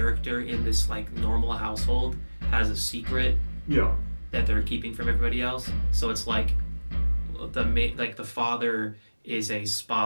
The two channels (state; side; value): inverted; both; correlation -1.00